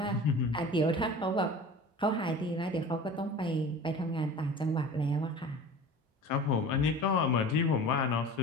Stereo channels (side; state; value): both; normal; correlation 0.39